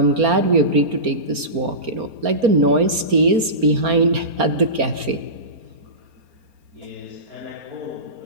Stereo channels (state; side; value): late; left; 4.3 ms